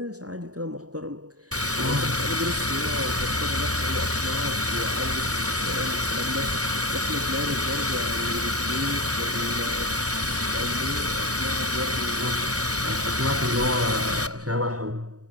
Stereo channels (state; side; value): late; left; 0.67 ms